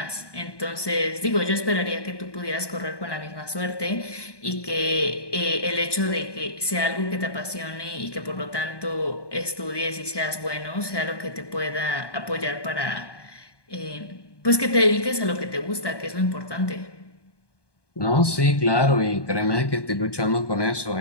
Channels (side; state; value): right; late; 1.2 ms